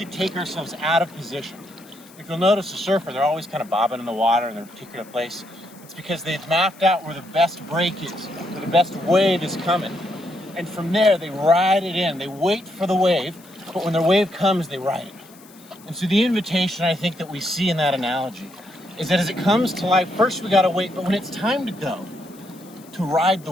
take ourselves out of position. If you'll notice a surfer, they're always kind of bobbing in the water in their particular place. It's because they've mapped out where the best break is, where the best wave is coming. And from there, they ride it in. They wait for the wave, but when the wave comes, they ride it. And so the invitation I think that we see in that analogy is that as it comes to life, first we gotta wait, but when it's time to go, to ride the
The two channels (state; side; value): noise; left; hiss, 24 dB below the sound